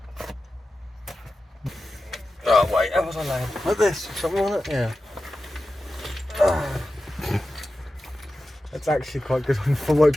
Oh wait, how was I laying? Like this, something on it? Yeah. That's actually quite good on the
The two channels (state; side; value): normal; both; correlation 0.93